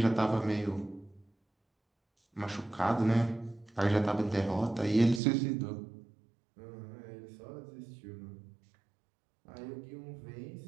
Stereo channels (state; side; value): drops out; left; at 5.2 s